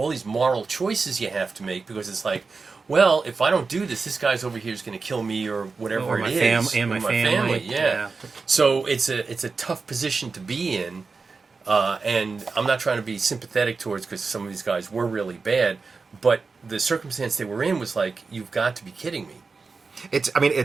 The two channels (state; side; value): quieter; left; 4.4 dB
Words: these moral choices you have to make, because it's like, well, if I don't do this, this guy's over here is going to kill me or whatever Or my it is. and my Or family. yeah. So it's a tough position to be in, and I'm not trying to be sympathetic towards, because some of these guys were really bad, but the circumstance they were in was like, you've got to be kidding me. It's